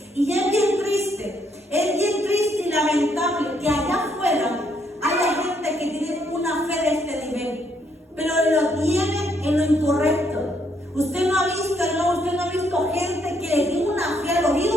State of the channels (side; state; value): both; normal; correlation 0.72